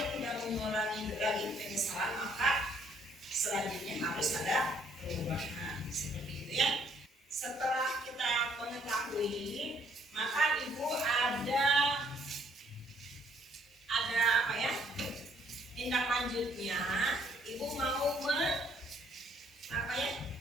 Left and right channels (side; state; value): both; normal; correlation 0.65